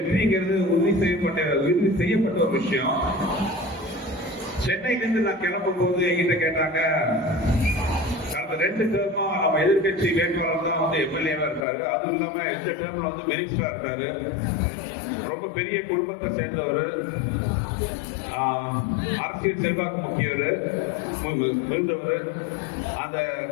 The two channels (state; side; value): drops out; right; at 11.7 s